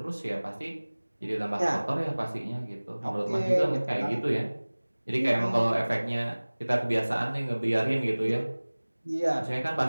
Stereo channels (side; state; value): both; inverted; correlation -1.00